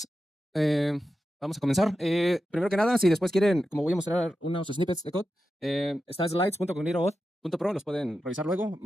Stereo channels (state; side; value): normal; both; correlation 0.91